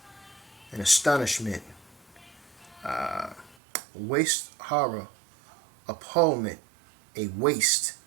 An astonishment. Waste, horror, appallment, a waste.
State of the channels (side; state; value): left; drops out; at 3.6 s